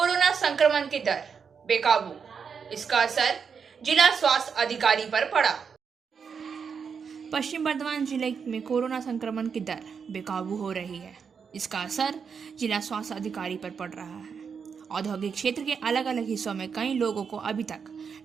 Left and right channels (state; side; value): quieter; left; 6.3 dB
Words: संक्रमण की दर बेकाबू, इसका असर जिला स्वास्थ्य अधिकारी पर पड़ा। पश्चिम बर्धमान जिले में कोरोना संक्रमण की दर बेकाबू हो रही है, इसका असर जिला स्वास्थ्य अधिकारी पर पड़ रहा है। औद्योगिक क्षेत्र के अलग अलग हिस्सों में कई लोगों को अभी तक